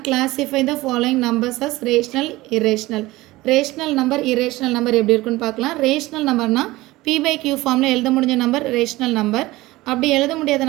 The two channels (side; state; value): left; quieter; 19.0 dB